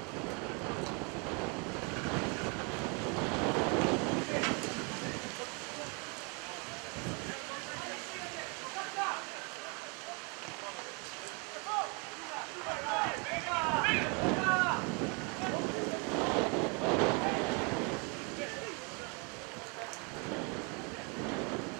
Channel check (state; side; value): quieter; left; 33.1 dB